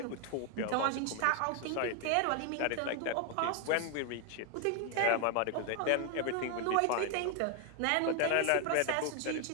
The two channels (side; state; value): both; different; correlation 0.01